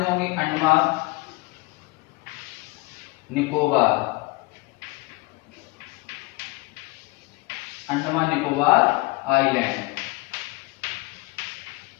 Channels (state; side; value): quieter; right; 23.9 dB